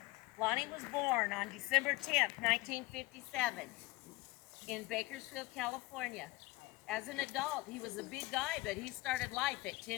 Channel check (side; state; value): right; quieter; 21.1 dB